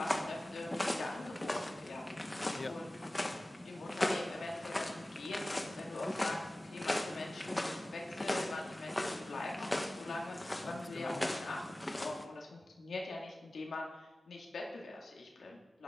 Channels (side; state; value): both; normal; correlation 0.97